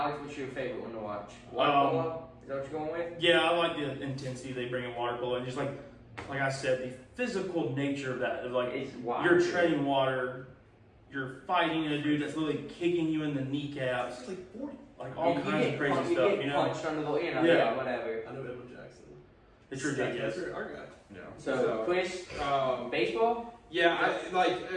what's your favorite one to watch? Water polo? Is that what you're going with? Yeah, I like the intensity they bring in water polo, and just like I said, the physical nature of that. Of like It's wild. you're treading water, you're fighting a dude that's literally kicking you in the kneecaps, It's like 40. like all You kinds get of crazy punched- stuff. get You know, punched under the, Yeah. whatever. I know Edwin Jackson. it's ridiculous. That's our guy. Yeah. So, Chris, baseball? Yeah, I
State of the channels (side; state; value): both; identical; correlation 1.00